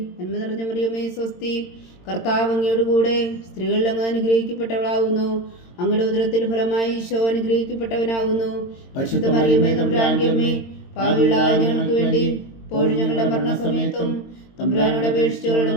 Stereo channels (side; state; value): right; late; 22 ms